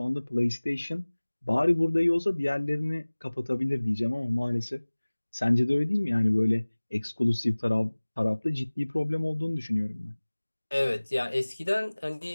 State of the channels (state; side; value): inverted; both; correlation -1.00